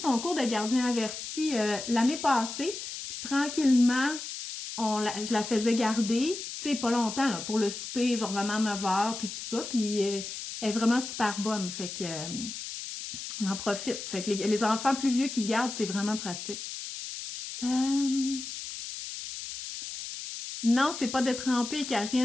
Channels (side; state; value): left; noise; hiss, 8 dB below the sound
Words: cours de gardien averti l'année passée. Puis tranquillement, je la faisais garder, tu sais, pas longtemps, là, pour le souper, genre vraiment 9 heures, puis tout ça. Puis elle est vraiment super bonne, fait que on en profite. Fait que les enfants plus vieux qui gardent, c'est vraiment pratique. Non, c'est pas de tremper,